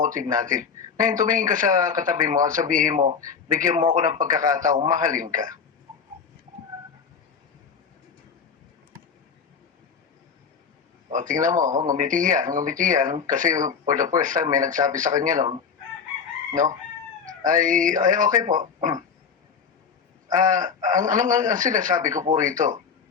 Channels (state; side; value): quieter; right; 6.2 dB